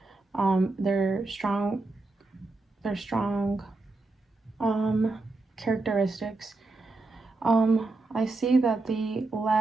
their strong characteristics. I see that they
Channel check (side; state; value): left; quieter; 3.3 dB